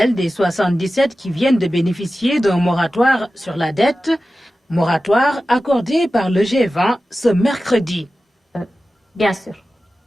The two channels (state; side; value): normal; both; correlation 0.94